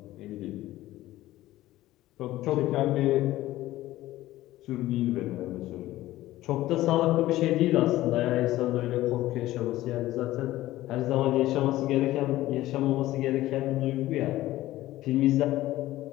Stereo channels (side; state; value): right; quieter; 15.9 dB